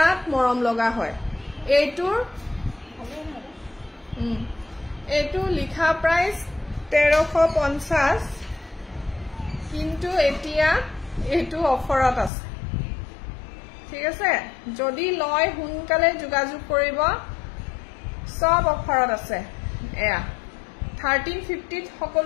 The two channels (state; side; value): drops out; right; at 12.3 s